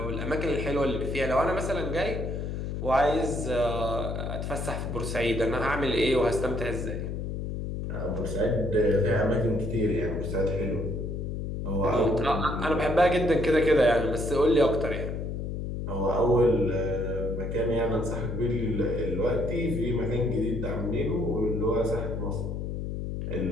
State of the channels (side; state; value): left; noise; hum, 4 dB below the sound